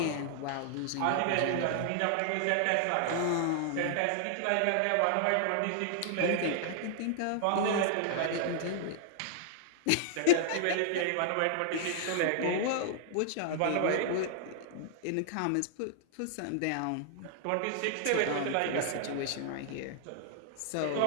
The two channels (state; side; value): different; both; correlation -0.01